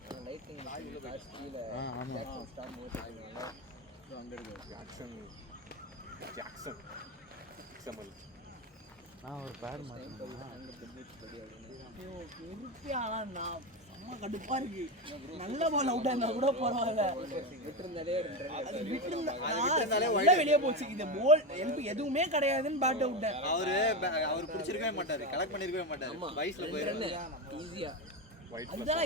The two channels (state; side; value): normal; both; correlation 0.15